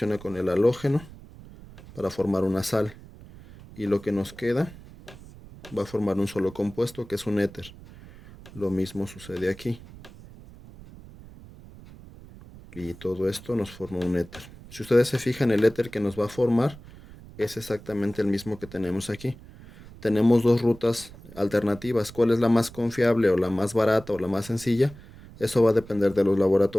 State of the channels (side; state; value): right; noise; rumble, 19 dB below the sound